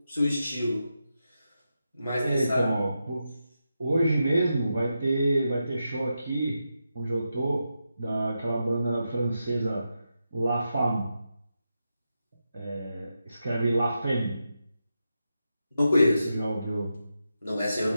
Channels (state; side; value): inverted; both; correlation -0.88